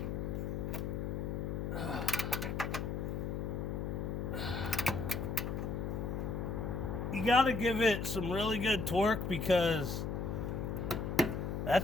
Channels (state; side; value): noise; left; hum, 2 dB below the sound